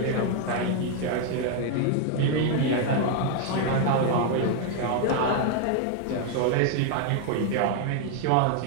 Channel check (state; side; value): different; both; correlation 0.00